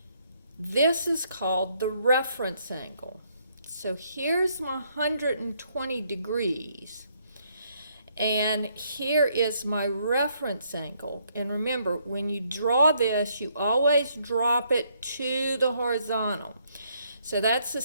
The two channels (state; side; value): inverted; both; correlation -0.71